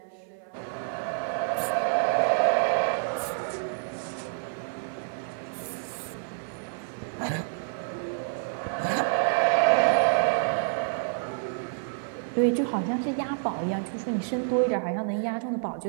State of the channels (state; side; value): silent; left; 59 dB below the other